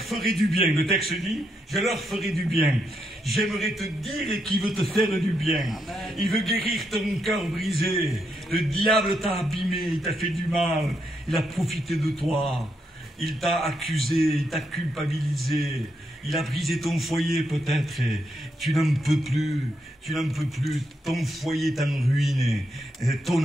du bien. Le texte dit, je leur ferai du bien. J'aimerais te dire qu'il veut te faire du bien. Il veut guérir ton cœur brisé. Le diable t'a abîmé, il t'a fait du mal. Il a profité de toi. Il t'a accusé, il t'a culpabilisé. Il a brisé ton foyer peut-être. Tu n'en peux plus. Tu n'en peux plus. Ton foyer est en ruine.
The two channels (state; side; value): normal; both; correlation 0.80